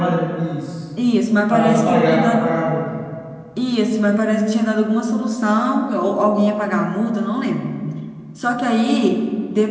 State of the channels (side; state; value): both; identical; correlation 1.00